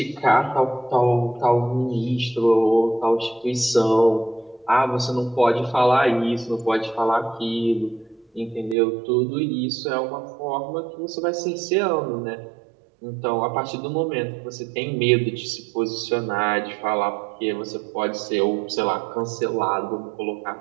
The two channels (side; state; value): left; drops out; at 8.8 s